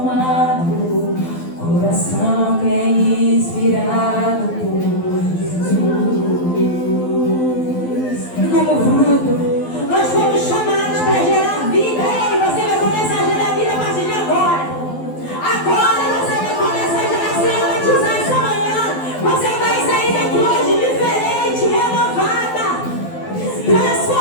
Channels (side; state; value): right; late; 12 ms